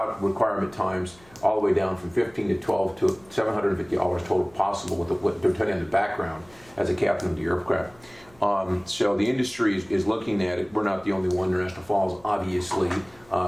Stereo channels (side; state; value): left; noise; hum, 27 dB below the sound